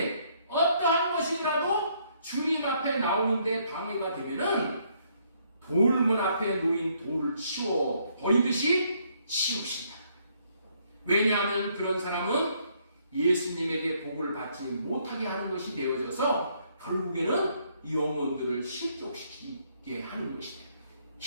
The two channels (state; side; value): inverted; both; correlation -0.69